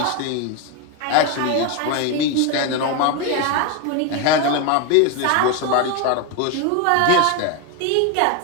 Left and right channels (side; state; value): both; different; correlation 0.02